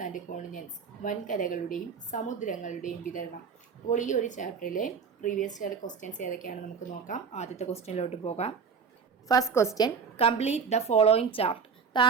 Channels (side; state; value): left; quieter; 6.0 dB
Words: and continents, വൻകരകളുടെയും സമുദ്രങ്ങളുടെയും വിതരണം. അപ്പോൾ ഈ ഒരു ചാപ്റ്ററിലെ പ്രീവിയസ് ഇയർ ക്വസ്റ്റ്യൻസ് ഏതൊക്കെയാണ് നമുക്ക് നോക്കാം. ആദ്യത്തെ ക്വസ്റ്റ്യനിലോട്ട് പോകാം. First question, complete the following chart.